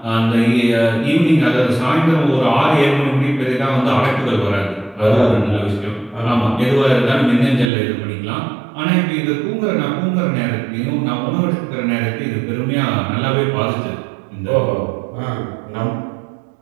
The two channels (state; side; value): drops out; left; at 7.7 s